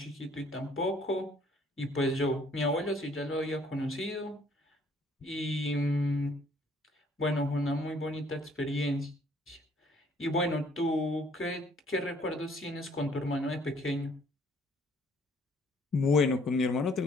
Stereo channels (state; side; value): normal; both; correlation 0.61